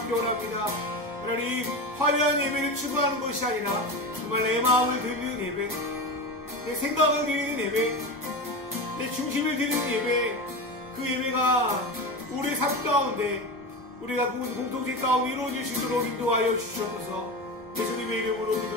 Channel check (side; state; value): both; normal; correlation 0.23